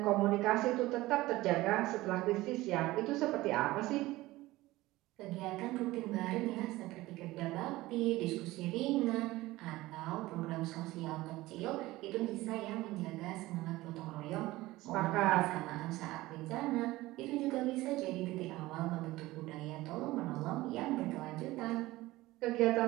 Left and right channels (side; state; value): left; quieter; 18.3 dB